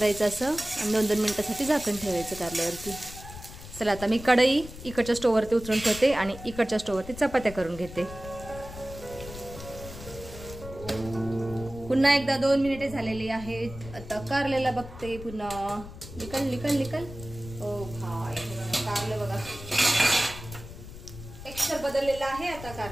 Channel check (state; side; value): noise; left; rumble, 13 dB below the sound